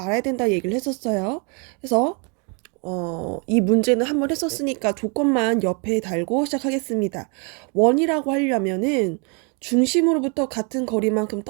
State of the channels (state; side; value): quieter; left; 35.7 dB